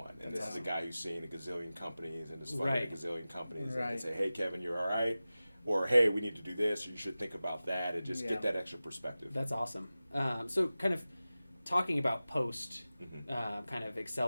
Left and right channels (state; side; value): inverted; both; correlation -0.96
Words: And this is a guy who's seen a gazillion companies and has funded a gazillion companies. And can say, hey, Kevin, you're all right. Or, hey, we need to do this, or you should think about that, and just get that extra perspective. That's awesome. So kind of talking about post kind of